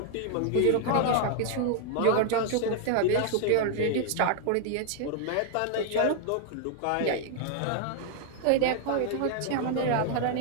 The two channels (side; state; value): both; different; correlation 0.00